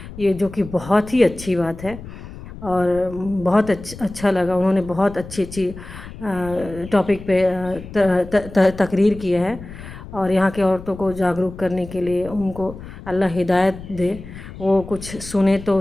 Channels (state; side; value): noise; left; rumble, 14 dB below the sound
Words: ये जो कि बहुत ही अच्छी बात है और बहुत अच्छा लगा। उन्होंने बहुत अच्छी अच्छी टॉपिक पे तकरीर किया है और यहाँ के औरतों को जागरूक करने के लिए, उनको अल्लाह हिदायत दे, वो कुछ सुने तो